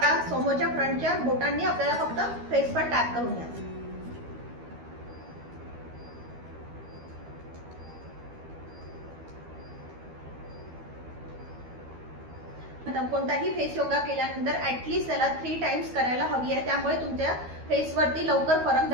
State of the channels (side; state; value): left; late; 12 ms